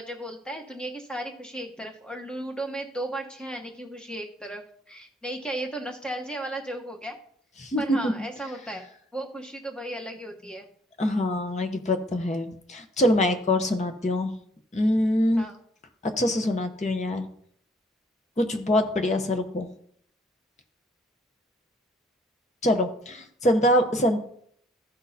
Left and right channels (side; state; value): both; normal; correlation 0.62